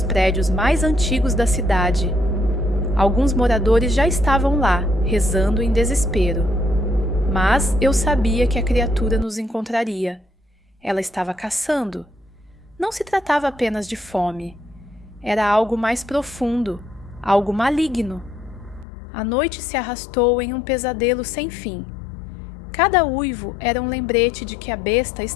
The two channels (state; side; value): drops out; right; at 18.9 s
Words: prédios mais antigos da cidade. Alguns moradores já estavam lá, rezando em desespero. Mas eu sabia que a criatura nos encontraria. Ela estava caçando. Não se tratava apenas de fome. Era algo mais profundo, algo maligno. A noite se arrastou em um pesadelo sem fim. Cada uivo era um lembrete de que a besta